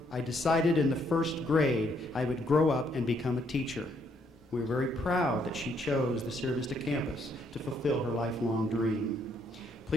"I decided in the first grade I would grow up and become a teacher." We're very proud that she chose the Sierra Vista campus to fulfill her lifelong dream.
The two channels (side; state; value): both; normal; correlation 0.71